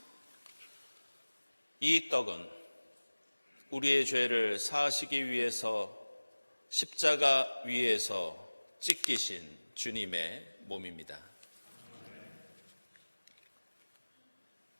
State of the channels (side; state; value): both; inverted; correlation -1.00